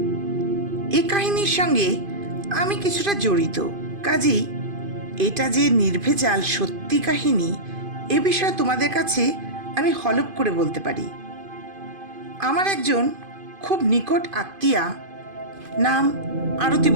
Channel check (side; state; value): left; late; 2.5 ms